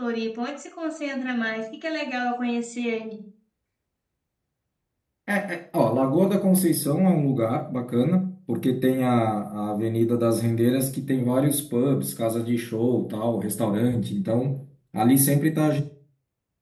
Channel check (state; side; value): identical; both; correlation 1.00